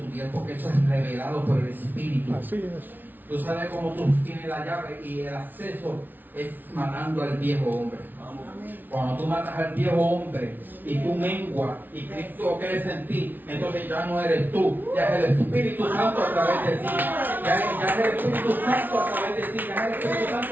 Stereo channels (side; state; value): left; late; 0.088 ms